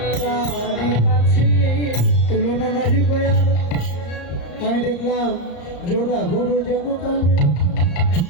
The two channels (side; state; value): right; late; 34 ms